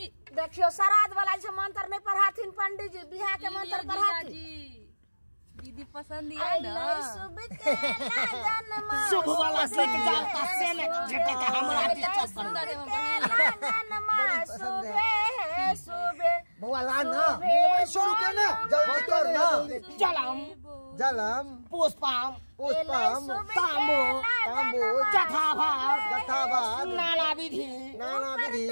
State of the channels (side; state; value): both; inverted; correlation -1.00